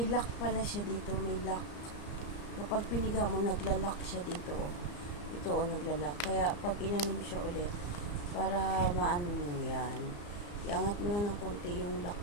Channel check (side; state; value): right; late; 34 ms